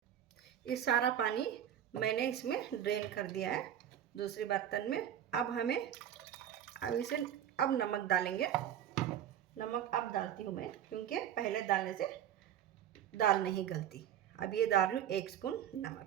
ये सारा पानी मैंने इसमें ड्रेन कर दिया है दूसरे बर्तन में। अब इसे अब नमक डालेंगे। नमक अब डालती हूँ मैं क्योंकि पहले डालने से दाल नहीं गलती। अब ये डाल रही हूँ 1 स्पून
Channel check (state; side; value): quieter; left; 10.3 dB